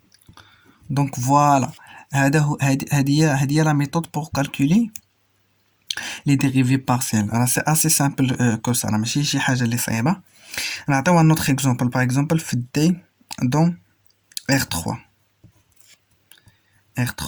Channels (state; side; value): identical; both; correlation 1.00